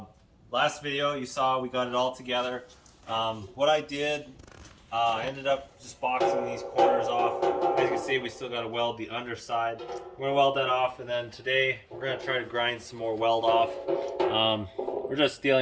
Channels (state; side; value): identical; both; correlation 1.00